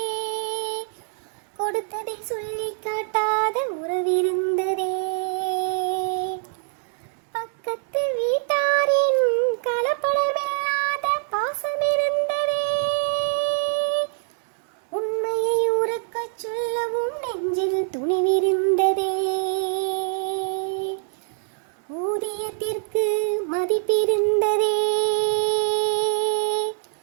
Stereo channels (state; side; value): silent; left; digital silence